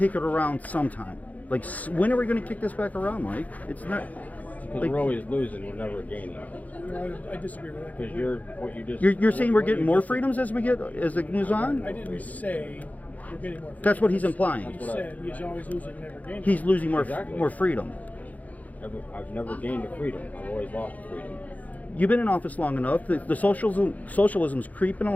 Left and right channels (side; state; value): right; late; 0.076 ms